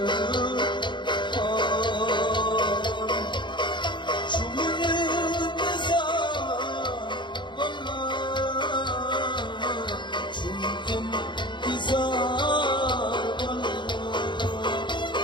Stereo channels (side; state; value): right; late; 0.23 ms